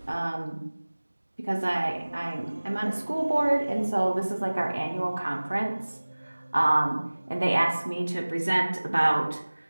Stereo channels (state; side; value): inverted; both; correlation -1.00